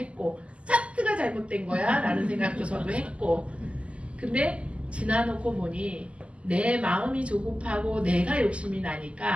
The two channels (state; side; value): late; left; 0.057 ms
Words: 차트가 잘못된 거야 라는 생각도 저도 했고 근데 지나놓고 보니 내 마음이 조급하고 내가 욕심이